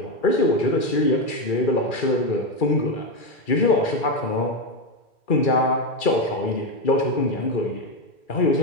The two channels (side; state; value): right; late; 2.4 ms